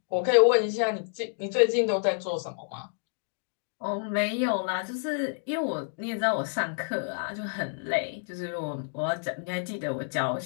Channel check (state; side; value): silent; right; digital silence